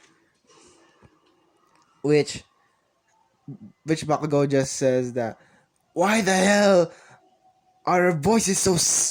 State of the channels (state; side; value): identical; both; correlation 1.00